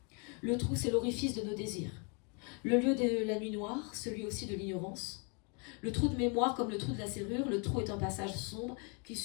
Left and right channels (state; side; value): quieter; right; 35.5 dB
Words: Le trou, c'est l'orifice de nos désirs. Le lieu de la nuit noire, celui aussi de l'ignorance. Le trou de mémoire, comme le trou de la serrure, le trou est un passage sombre qui